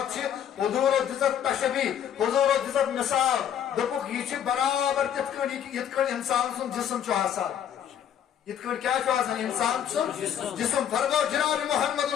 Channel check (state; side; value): quieter; right; 9.4 dB